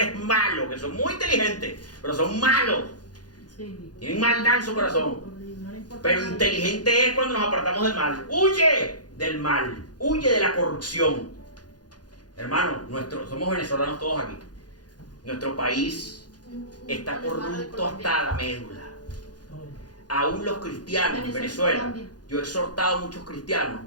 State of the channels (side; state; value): right; late; 0.69 ms